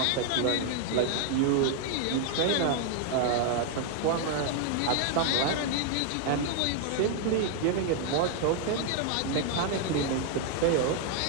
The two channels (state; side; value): different; both; correlation 0.00